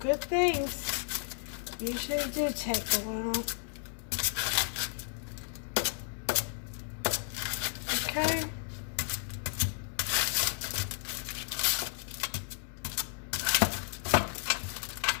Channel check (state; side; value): silent; right; 56 dB below the other